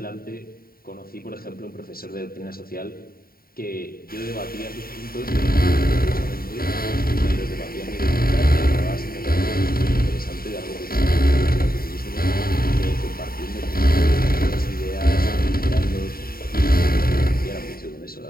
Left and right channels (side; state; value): right; late; 0.43 ms